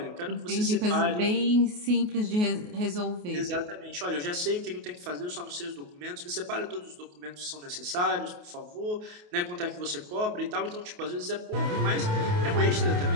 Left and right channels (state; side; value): late; left; 28 ms